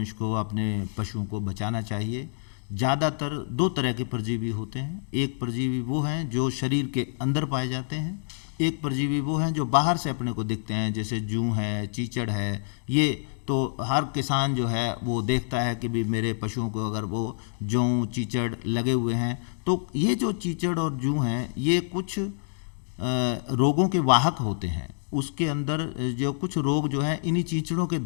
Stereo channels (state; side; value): silent; right; digital silence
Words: को अपने पशुओं को बचाना चाहिए। ज़्यादातर दो तरह के परजीवी होते हैं। एक परजीवी वो हैं जो शरीर के अंदर पाए जाते हैं, एक परजीवी वो हैं जो बाहर से अपने को दिखते हैं, जैसे जूं है, चीचड़ है। ये तो हर किसान जो है वो देखता है कि भी मेरे पशुओं को अगर वो जूं चीचड़ लगे हुए हैं, तो ये जो चीचड़ और जूं हैं ये कुछ रोगों के वाहक होते हैं। उसके अंदर जो कुछ रोग जो है इन्हीं चीचड़ों के